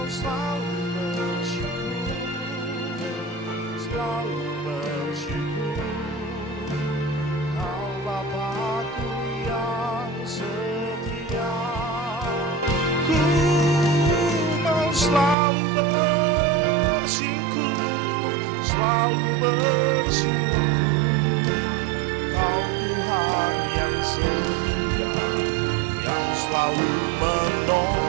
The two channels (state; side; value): drops out; left; at 15.4 s